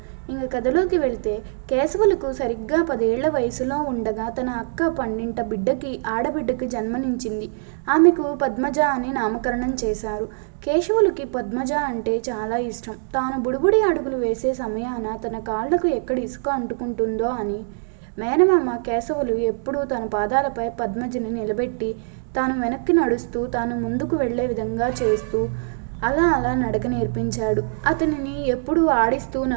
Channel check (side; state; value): left; silent; digital silence